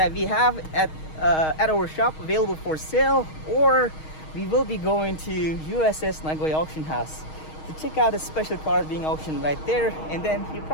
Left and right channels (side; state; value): right; late; 6.4 ms